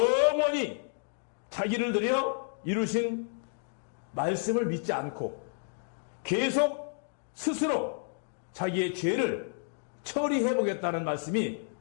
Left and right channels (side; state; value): right; silent; digital silence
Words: 자기를 들여 이루신 말씀을 믿지 않고 계속 스스로 자기의 죄를 처리해보겠다는 말씀이